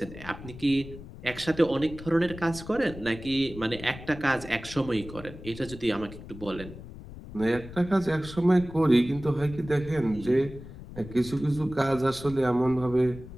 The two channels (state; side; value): noise; left; rumble, 14 dB below the sound